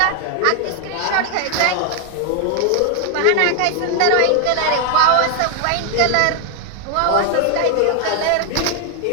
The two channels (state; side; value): different; both; correlation 0.00